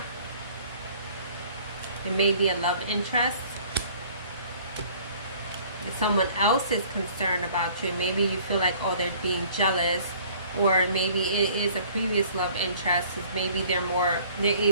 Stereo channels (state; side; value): inverted; both; correlation -0.54